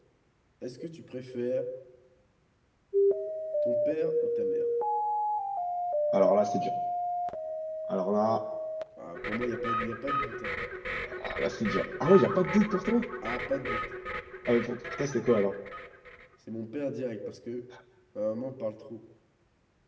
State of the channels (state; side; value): identical; both; correlation 1.00